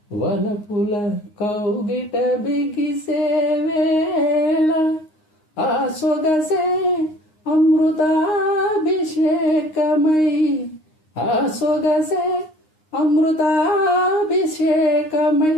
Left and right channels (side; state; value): right; late; 9.6 ms